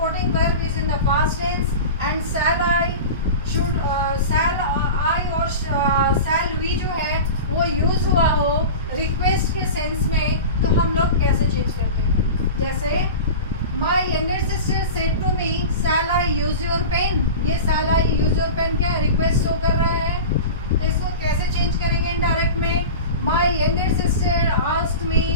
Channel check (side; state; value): both; inverted; correlation -0.31